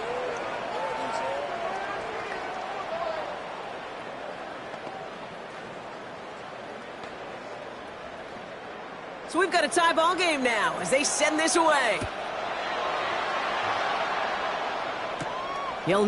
So we've got a tie ball game now as they send this away. Hill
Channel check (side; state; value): both; identical; correlation 1.00